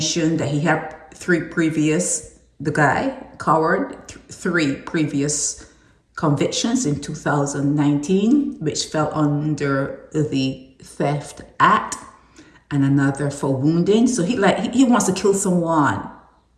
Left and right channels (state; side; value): identical; both; correlation 1.00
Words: that he had three previous convictions in 2019, which fell under the Theft Act, and another for wounding. So he wants to kill someone.